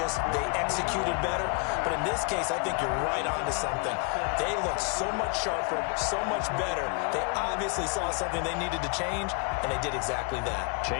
they executed better. But in this case, I think you're right on to something. They look so much sharper, so much better. They obviously saw something they needed to change, and they did exactly that.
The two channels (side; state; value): right; quieter; 35.1 dB